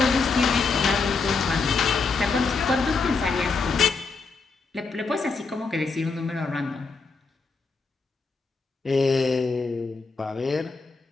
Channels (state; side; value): quieter; right; 4.4 dB